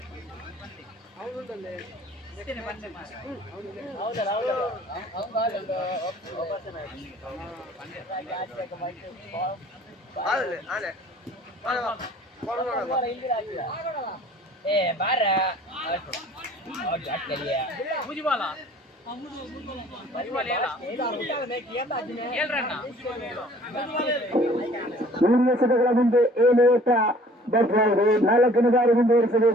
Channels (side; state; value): both; normal; correlation 0.53